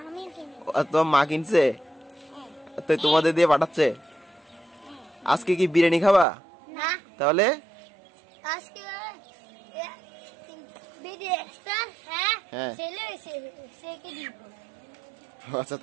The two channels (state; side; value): drops out; left; at 6.2 s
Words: কিনি। তোমার মা কিনছে? তো তোমাদের দিয়ে পাঠাচ্ছে? আজকে কি বিরিয়ানি খাবা? না। তাহলে আজকে বিরিয়ানিটা হ্যাঁ সেকে দিব। আচ্ছা,